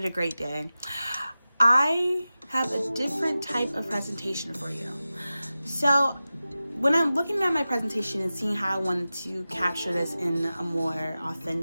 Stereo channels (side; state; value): both; inverted; correlation -0.95